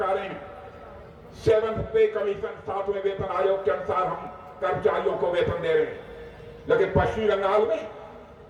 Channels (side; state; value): both; identical; correlation 1.00